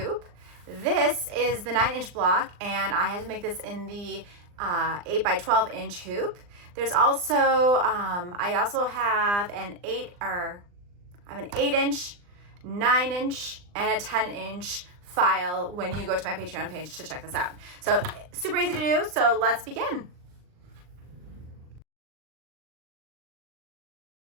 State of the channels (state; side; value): late; left; 39 ms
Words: This is the 9-inch block and I had to make this in the 8x12-inch hoop. There's also, I also have an 8-inch, 9-inch, and a 10-inch file when you go to my Patreon page to check this out. So super easy to do, so let's begin.